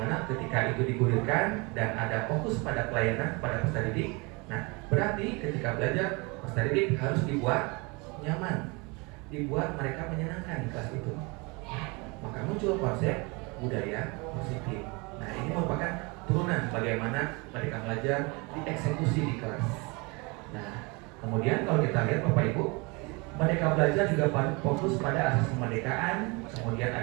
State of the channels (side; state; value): left; quieter; 28.2 dB